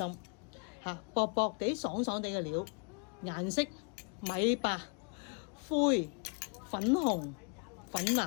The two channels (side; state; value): right; quieter; 37.9 dB